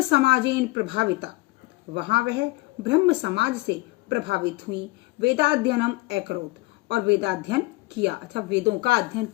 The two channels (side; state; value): right; quieter; 21.9 dB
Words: समाजेन प्रभाविता, वहां वह ब्रह्म समाज से प्रभावित हुई। वेदाध्ययनम अकरोत, और वेदाध्ययन किया अथवा वेदों का अध्ययन